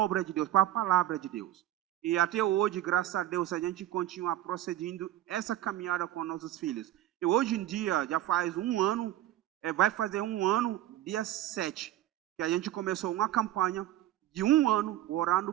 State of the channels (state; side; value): quieter; left; 13.6 dB